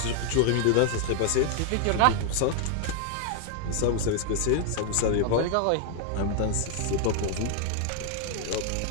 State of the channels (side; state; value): both; different; correlation 0.00